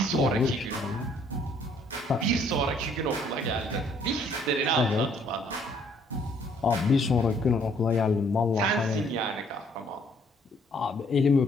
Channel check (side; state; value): both; normal; correlation 0.63